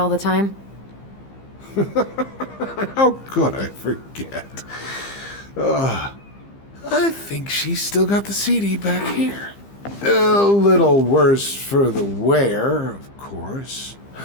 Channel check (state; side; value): late; right; 15 ms